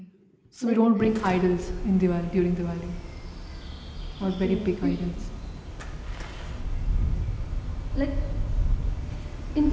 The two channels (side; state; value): both; identical; correlation 1.00